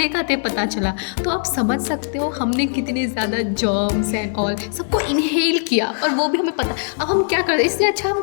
खाते पता चला, तो आप समझ सकते हो हमने कितने ज़्यादा जर्म्स एंड ऑल सबको इनहेल किया, और वो भी हमें पता। अब हम क्या करते, इससे अच्छा हम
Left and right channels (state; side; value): silent; right; 66 dB below the other